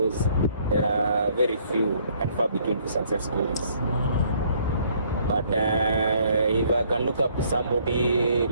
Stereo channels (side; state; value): both; inverted; correlation -0.64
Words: there are very few and far between for success stories. But if I can look up to somebody,